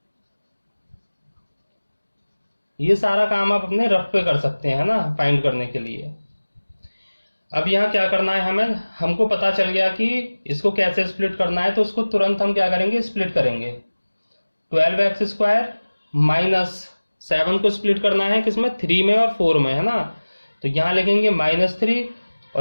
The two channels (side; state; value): both; inverted; correlation -1.00